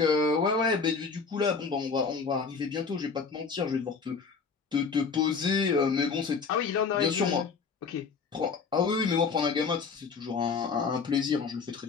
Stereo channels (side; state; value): right; quieter; 5.2 dB